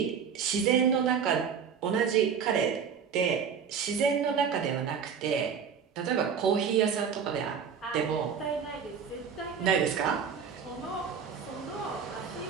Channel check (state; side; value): quieter; left; 6.9 dB